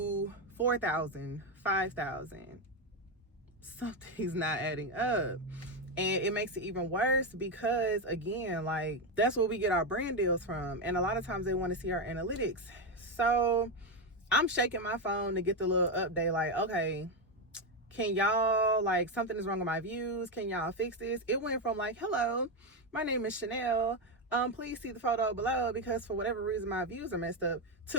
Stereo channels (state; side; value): normal; both; correlation 0.08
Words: 4,000, 5,000? Something's not adding up. And it makes it even worse because, again, like, that's where we get our brand deals from. And a lot of times they want to see our analytics. So I'm shaking my phone to get the little update like, okay, can y'all, like, something is wrong with my views. Can y'all fix this? It went from like, hello, my name is Chanel. Please see the photo below because for whatever reason my views are messed up,